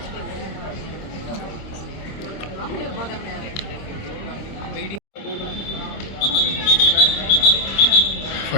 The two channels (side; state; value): right; late; 26 ms